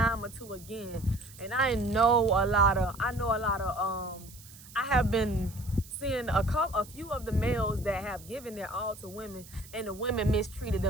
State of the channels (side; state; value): right; noise; hiss, 19 dB below the sound